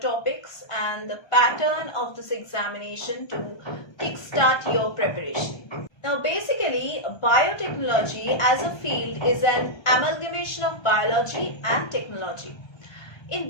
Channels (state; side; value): late; right; 1.3 ms